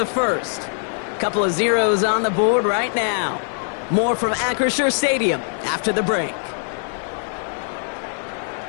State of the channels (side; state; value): right; silent; 60 dB below the other